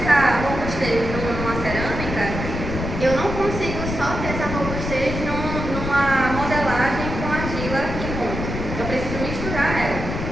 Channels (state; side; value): noise; left; rumble, 5 dB below the sound